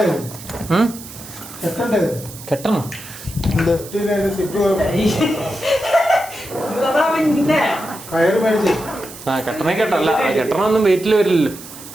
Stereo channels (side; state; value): right; noise; hiss, 15 dB below the sound